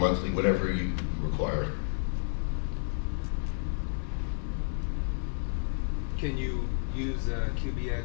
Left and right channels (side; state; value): right; silent; digital silence